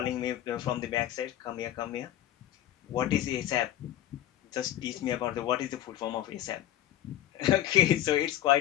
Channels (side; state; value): right; quieter; 12.5 dB